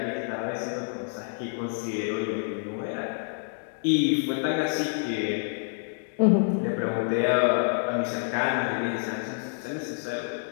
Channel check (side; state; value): right; silent; 59 dB below the other